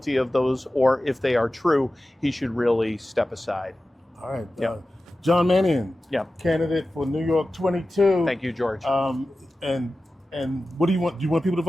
of those, or if they are true, he should really step aside. All right. John Mannion, candidate for New York 22. Thank you, George. And what do you want? Do you want people to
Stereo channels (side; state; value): both; normal; correlation 0.95